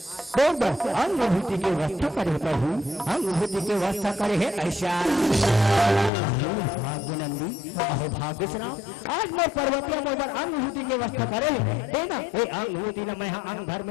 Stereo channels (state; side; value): drops out; right; at 6.1 s